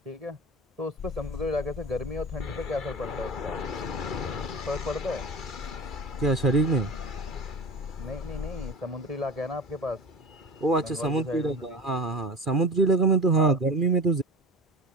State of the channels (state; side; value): normal; both; correlation 0.32